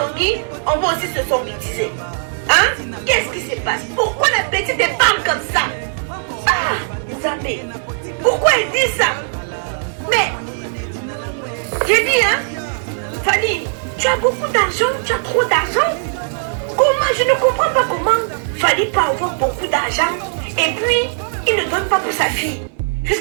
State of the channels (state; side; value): silent; left; digital silence